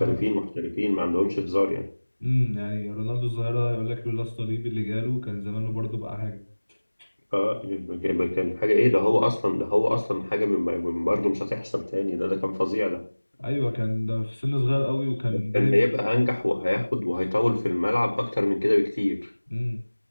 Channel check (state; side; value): inverted; both; correlation -1.00